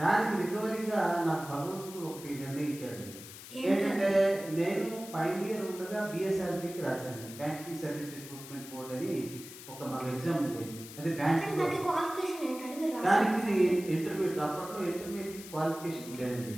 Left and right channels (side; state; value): left; noise; hiss, 14 dB below the sound